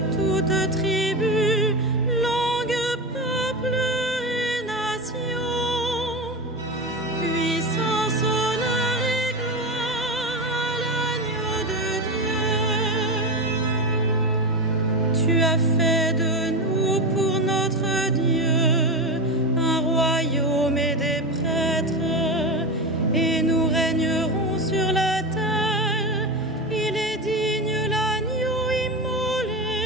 toute tribu, langue, peuple et nation. Puissance, honneur et gloire à l'agneau de Dieu. Tu as fait de nous pour notre Dieu un royaume et des prêtres, et nous régnerons sur la terre. Il est digne, l'agneau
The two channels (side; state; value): both; normal; correlation 0.19